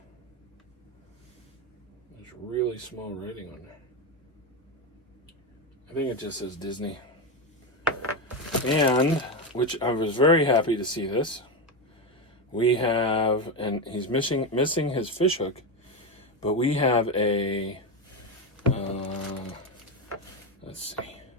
There's really small writing on there. I think it just says Disney. And, which I was very happy to see this. We have, and he's missing his fish hook, but we have a, let's see,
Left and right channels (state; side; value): normal; both; correlation 0.13